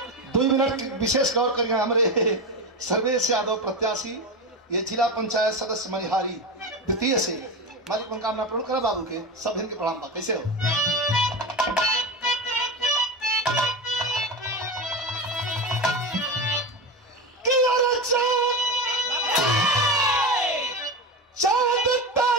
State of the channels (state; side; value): normal; both; correlation 0.20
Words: 2 मिनट विशेष गौर करिए हमारे सर्वेश यादव प्रत्याशी ये जिला पंचायत सदस्य मनिहारी द्वितीय से मालिक मनोकामना पूर्ण करा बाबू के सब इनके प्रणाम बा कैसे हो